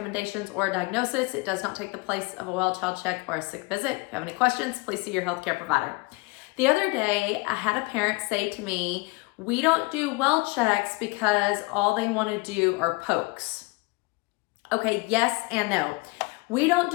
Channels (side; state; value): right; quieter; 26.3 dB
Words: or a diagnosis. It does not take the place of a well-child check or a sick visit. If you have any questions, please see your healthcare provider. The other day, I had a parent say to me, we don't do well checks because all they want to do are pokes. Okay, yes and no. We don't